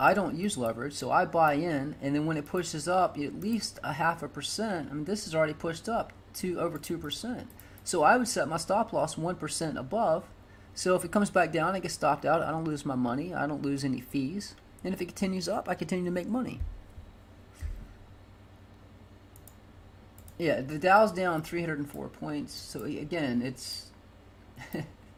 I don't use leverage, so I buy in, and then when it pushes up at least a 0.5%, I mean, this is already pushed up to over 2%. So I would set my stop loss 1% above. So if it comes back down, I get stopped out. I don't lose my money. I don't lose any fees. And if it continues up, I continue to make money. Yeah, the Dow's down 304 points. So again, it's...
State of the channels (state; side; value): identical; both; correlation 1.00